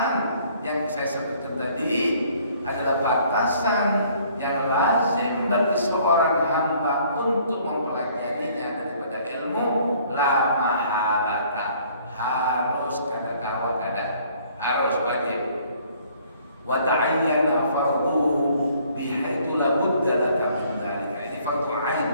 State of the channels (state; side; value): inverted; both; correlation -0.60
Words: yang saya sebutkan tadi, adalah batasan yang lazim bagi seorang hamba untuk mempelajarinya daripada ilmu la mahalata. Harus kada kawal kada, harus wajib. Wa ta'ayyana fardu bihaitsu la budda laka min dzalika. Ini fardu ain,